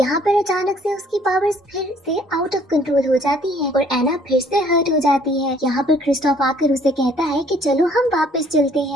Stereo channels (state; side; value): normal; both; correlation 0.60